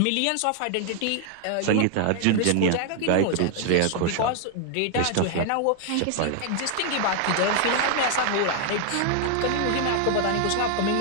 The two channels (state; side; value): different; both; correlation 0.00